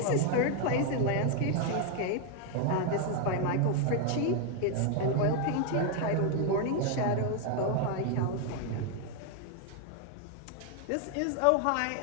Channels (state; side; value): different; both; correlation 0.01